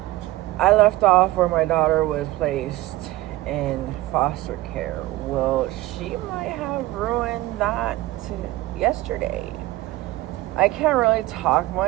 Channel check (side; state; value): left; quieter; 17.4 dB